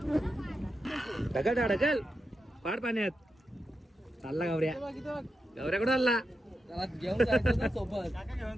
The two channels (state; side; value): normal; both; correlation 0.88